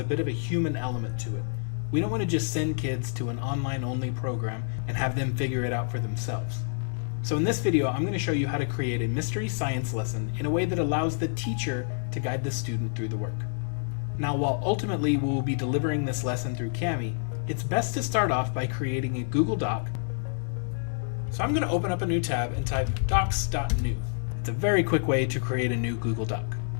bit of a human element to it. We don't want to just send kids to an online-only program and have them figure it out for themselves. So in this video, I'm going to show you how to create a mystery science lesson in a way that allows the teacher to guide the student through the work. Now, while ultimately we will be delivering this lesson through Kami, it's best to start off by creating a Google Doc. So I'm going to open up a new tab and type docs.new. It's a very quick way to create a new Google Doc.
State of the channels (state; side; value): silent; right; digital silence